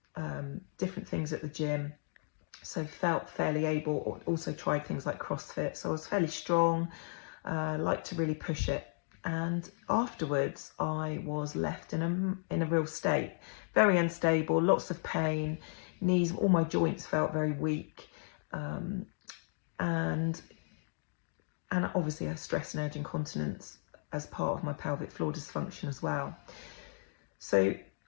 different things at the gym, so felt fairly able. Also tried things like CrossFit, so I was fairly strong, liked to really push it. And afterwards I was left in a real state, very unstable, lots of pain, knees, all my joints felt very weak, and obviously I had stress and urge incontinence as part of my pelvic floor dysfunction as well. So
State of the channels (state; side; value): silent; right; digital silence